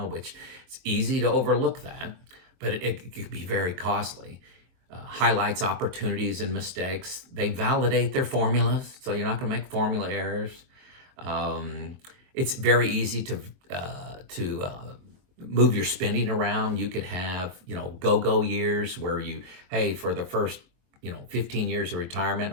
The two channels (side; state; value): left; late; 23 ms